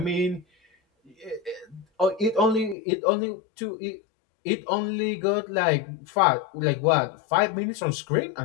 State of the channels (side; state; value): right; drops out; at 2.8 s